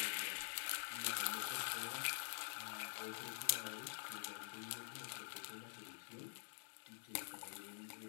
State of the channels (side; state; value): right; silent; digital silence